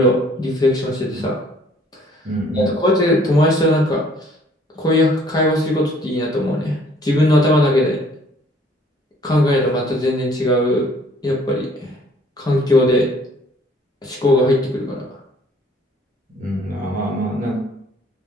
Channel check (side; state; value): both; normal; correlation 0.58